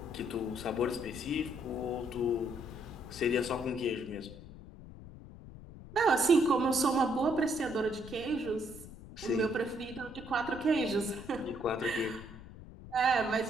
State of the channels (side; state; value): left; noise; rumble, 15 dB below the sound